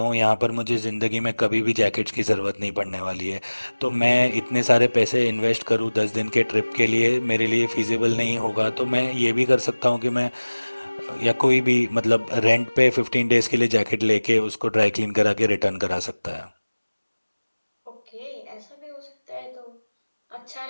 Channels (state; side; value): inverted; both; correlation -1.00